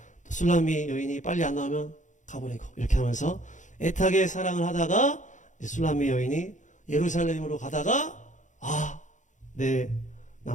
또 술람미 여인이 빨리 안 나오면 가버리고 이렇게 하면서 애타게 사랑을 하다가 술람미 여인이 예루살렘으로 가다가 내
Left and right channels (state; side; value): late; right; 0.36 ms